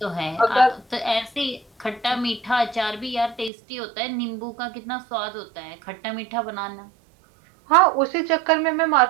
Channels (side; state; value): left; drops out; at 3.5 s